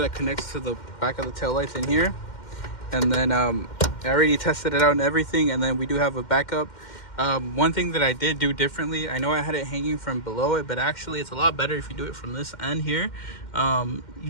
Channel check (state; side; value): late; right; 2.1 ms